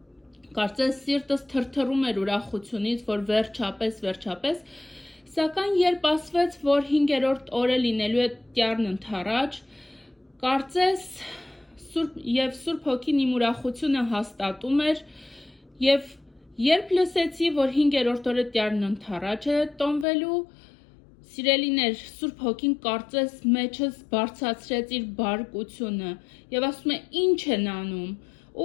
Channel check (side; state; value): right; drops out; at 20.1 s